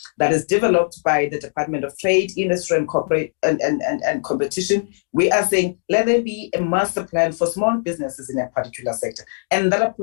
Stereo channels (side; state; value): right; silent; digital silence